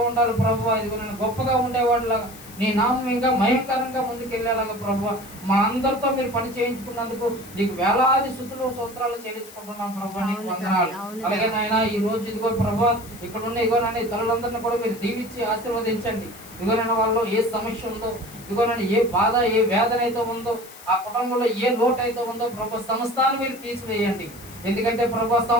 ఉండాలి ప్రభువా. ఇదిగోనైనా గొప్పగా ఉండేవాడిలాగా, నీ నామం ఇంకా భయంకరంగా ముందుకెళ్ళేలాగా ప్రభువా మా అందరితో మీరు పని చేయించుకున్నందుకు నీకు వేలాది స్తుతులు స్తోత్రాలు చెల్లించుకుంటున్నాం ప్రభువా. నీకు వందనాలు. అలాగే నాయన ఈ రోజు ఇదిగో ప్రభువా ఇక్కడ ఉన్న ఇదిగోనైనా ఈ తల్లులందరినీ కూడా మీరు దీవించి ఆశీర్వదించండి. ఇదిగోనైనా వాళ్ళు ఏ సమస్య ఉందో, ఇదిగోనైనా ఏ బాధ ఏ వేదన అయితే ఉందో, ఆ కుటుంబంలో ఏ లోటు అయితే ఉందో ప్రభు సమస్తాన్ని మీరు తీసివేయండి. ఎందుకంటే ప్రభు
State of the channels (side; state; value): left; noise; hiss, 19 dB below the sound